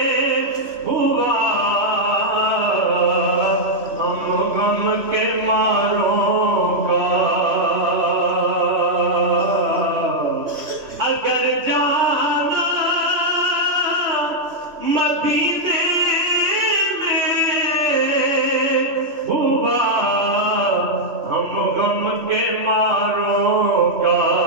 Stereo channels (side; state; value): left; late; 3.0 ms